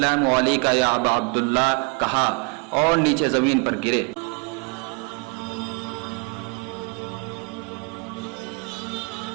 علیکم یا ابا عبداللہ کہا اور نیچے زمین پر گرے۔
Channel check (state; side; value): quieter; left; 32.8 dB